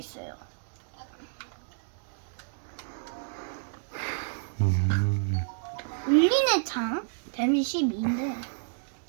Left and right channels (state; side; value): silent; left; digital silence